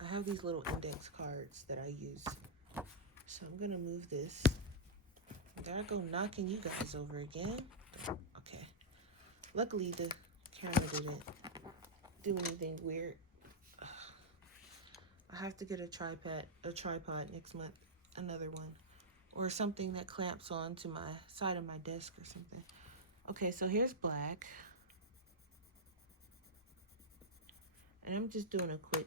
I have these little index cards that I use. So I'm gonna move this. There I go, knocking you guys over again. Okay. Luckily the camera didn't do anything weird. I have to get a tripod next month, another one, or something that clamps on to my side of my desk or something. Okay, so here's black. And I'm just doing a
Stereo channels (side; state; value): both; normal; correlation -0.06